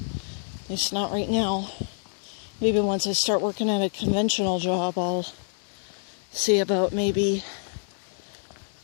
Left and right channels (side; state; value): right; silent; digital silence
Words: least not right now. Maybe once I start working at a conventional job, I'll see about maybe